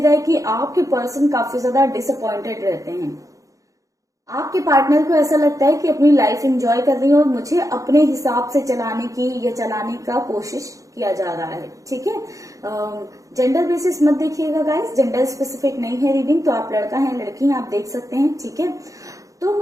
है कि आपके पर्सन काफी ज्यादा डिसअपॉइंटेड रहते हैं। आपके पार्टनर को ऐसा लगता है कि अपनी लाइफ एंजॉय कर रही है और मुझे अपने हिसाब से चलाने की या चलाने का कोशिश किया जा रहा है। ठीक है, जेंडर बेसिस मत देखिएगा गाइस, जेंडर स्पेसिफिक नहीं है रीडिंग, तो आप लड़का है लड़की हैं आप देख सकते हैं। ठीक है, तो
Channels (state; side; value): late; left; 0.16 ms